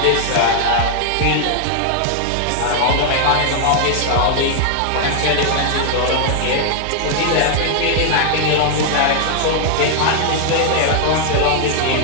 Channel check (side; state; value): both; different; correlation 0.00